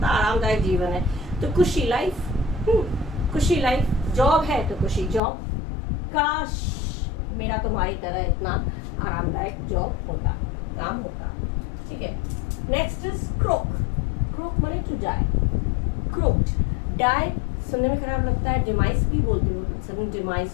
आरामदायक जीवन है। तो खुशी लाइफ, खुशी लाइफ, जॉब है तो खुशी जॉब। काश मेरा तुम्हारी तरह इतना आरामदायक जॉब होता, काम होता। ठीक है, नेक्स्ट इज क्रोक। क्रोक माने टू डाई। क्रोक्ड, डाई सुनने में खराब लगता है, डिमाइस भी बोलते हो,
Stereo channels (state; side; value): drops out; right; at 5.2 s